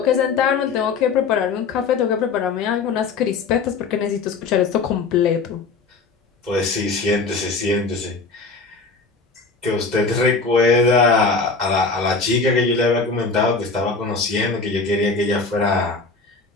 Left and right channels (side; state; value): right; quieter; 4.3 dB